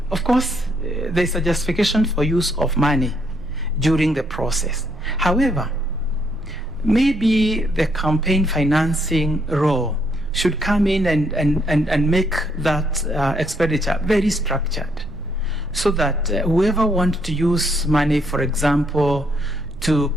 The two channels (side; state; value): right; noise; rumble, 16 dB below the sound